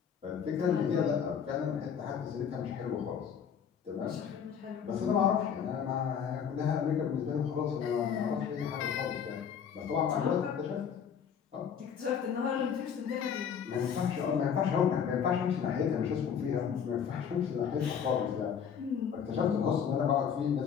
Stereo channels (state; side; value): quieter; right; 7.6 dB